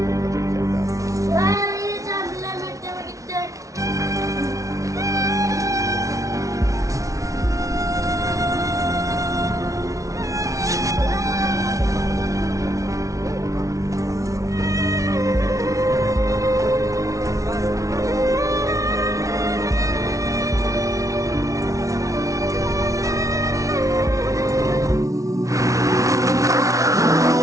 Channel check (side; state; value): left; late; 0.16 ms